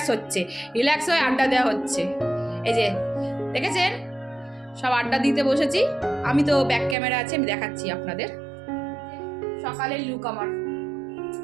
হচ্ছে, রিল্যাক্স হয়ে আড্ডা দেওয়া হচ্ছে। এই যে দেখেছেন সব আড্ডা দিতে বসেছি, আমি তো ব্যাক ক্যামেরা আছে, আমি দেখাচ্ছি আপনাদের সকালের লুক আমার।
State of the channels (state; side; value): drops out; left; at 7.0 s